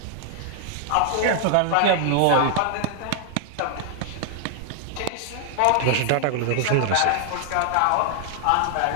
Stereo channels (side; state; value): both; different; correlation 0.00